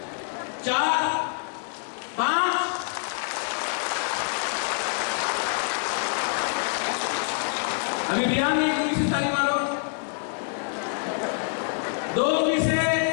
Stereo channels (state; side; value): silent; right; 61 dB below the other